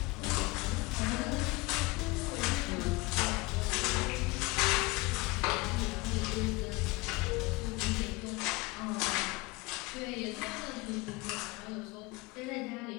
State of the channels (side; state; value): right; quieter; 23.6 dB